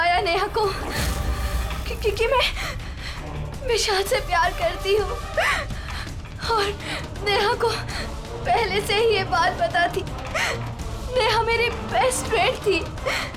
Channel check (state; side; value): identical; both; correlation 1.00